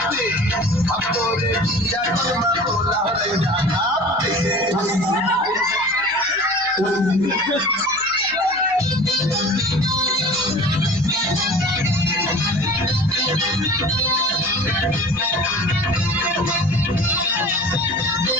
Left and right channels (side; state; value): right; noise; hum, 25 dB below the sound